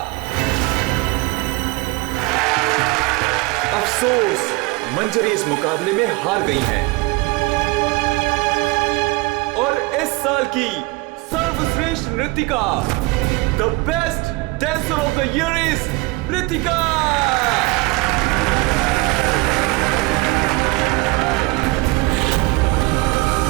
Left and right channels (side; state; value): left; quieter; 23.5 dB